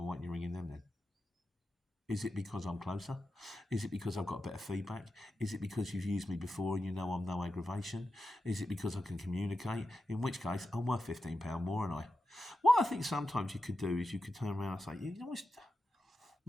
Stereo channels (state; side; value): normal; both; correlation 0.91